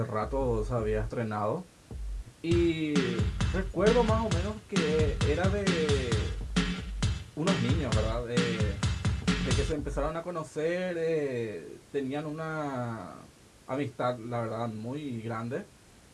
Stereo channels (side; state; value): both; identical; correlation 1.00